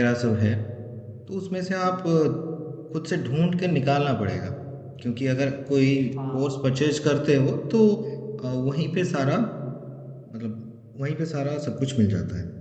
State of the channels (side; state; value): both; identical; correlation 1.00